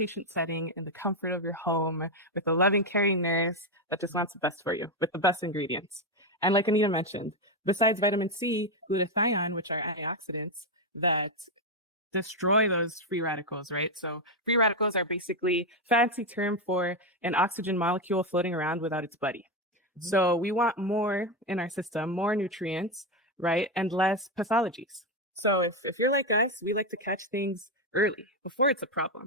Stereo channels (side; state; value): both; normal; correlation 0.08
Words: setting in the comfort of your home with a loving, caring nurse that just wants the best for you with the best ingredients? And like Anita mentioned, besides vitamin C, glutathione, which are antioxidants that destroy those free radicals, right? So free radicals are basically fancy term for an oxygen molecule floating around without its buddy. So we want more in our system, more nutrients, right? And less pathologies. So if you're like us, we like to catch things early before it's a